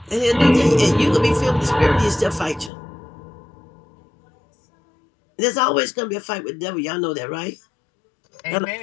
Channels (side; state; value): right; drops out; at 2.7 s